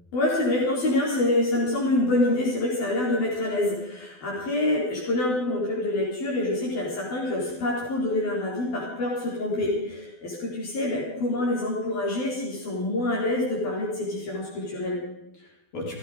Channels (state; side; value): late; right; 12 ms